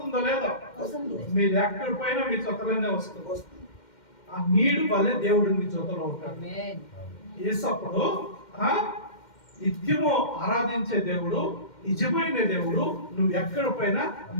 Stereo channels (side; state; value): right; late; 2.1 ms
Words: లేదో, మీరు ఎక్కడి పైన మీ జొతలోనే వస్తుంది. ఆ నీడు వల్లే దేవుడు మీ జొతలో ఉంటాడు. యేసప్పుడు నిత్యము ఆరాధించే దేవుడు, నిజమైన దేవుడు, నువ్వు ఎక్కడ పైన